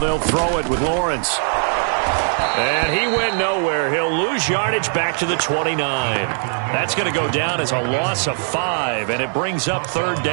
throw it with Lawrence. And he went nowhere. He'll lose yardage back to the 29. That's going to go down as a loss of 5, and it brings up 3rd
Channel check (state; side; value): silent; left; 66 dB below the other